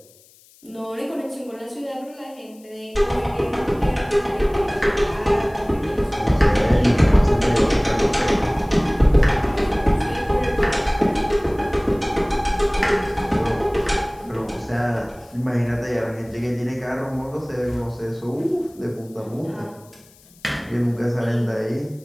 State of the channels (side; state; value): left; noise; hiss, 28 dB below the sound